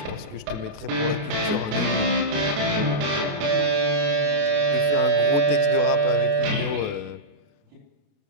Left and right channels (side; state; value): left; late; 28 ms